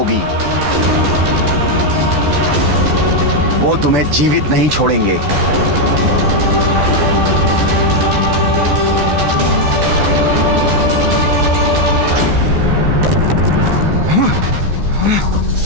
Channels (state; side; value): late; left; 14 ms